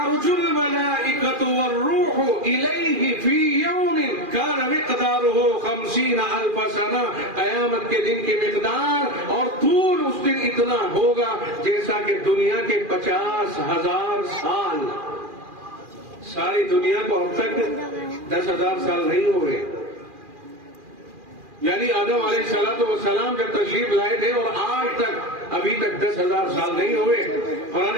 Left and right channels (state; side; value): late; left; 2.4 ms